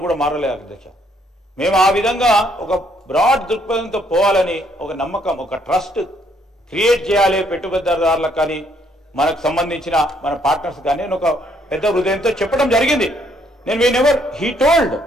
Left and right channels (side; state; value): both; normal; correlation 0.68